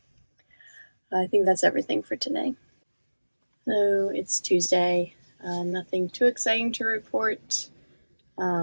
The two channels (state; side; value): inverted; both; correlation -1.00